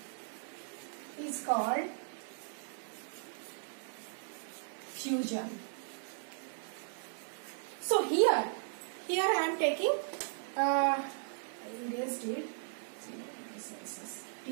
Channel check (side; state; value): left; silent; digital silence